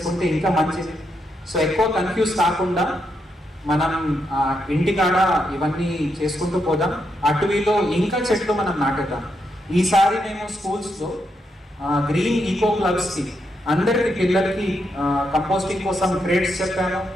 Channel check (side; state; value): both; normal; correlation 0.81